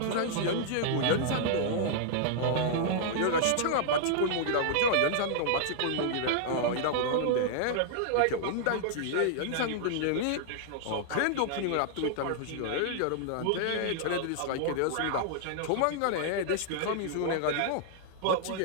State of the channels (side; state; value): both; different; correlation -0.01